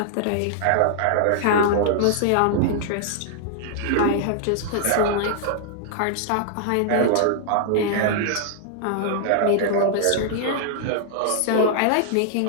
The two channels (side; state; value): both; different; correlation -0.01